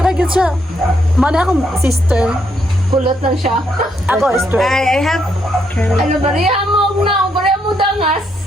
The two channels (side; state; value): both; normal; correlation 0.76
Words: siya. Mana akong sister. Kulot lang siya. Ako, straight. I have... Ano, bariya mo na. Bariya mo dangas.